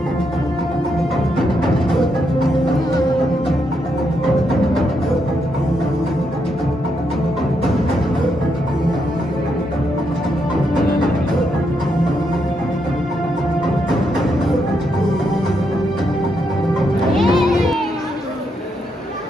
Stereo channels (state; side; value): normal; both; correlation 0.79